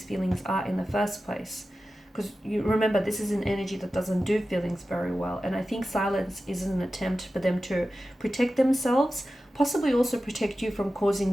feelings are in the first place. Because you remember, this is an energy that doesn't do feelings very well. And I think silence is an attempt for them to protect themselves, possibly also protect you from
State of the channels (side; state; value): both; normal; correlation 0.94